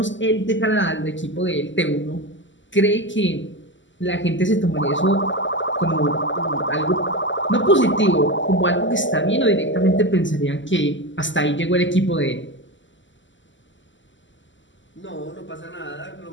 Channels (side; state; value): right; late; 0.54 ms